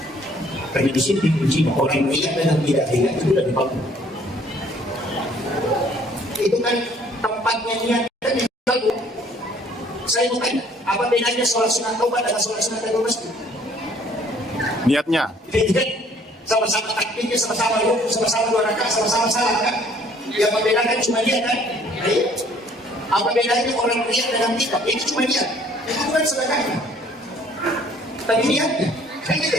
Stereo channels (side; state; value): both; normal; correlation 0.59